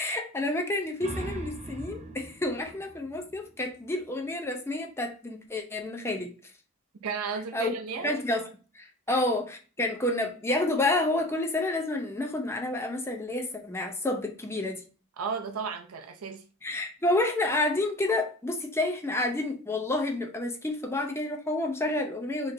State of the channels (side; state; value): both; normal; correlation 0.40